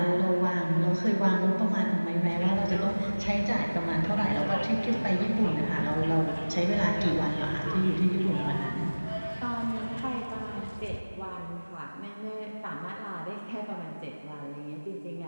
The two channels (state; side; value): inverted; both; correlation -1.00